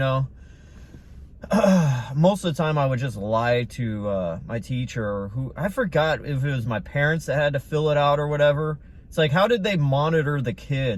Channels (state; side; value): identical; both; correlation 1.00